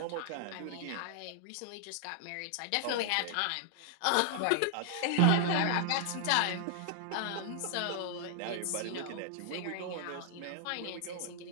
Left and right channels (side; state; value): both; different; correlation -0.01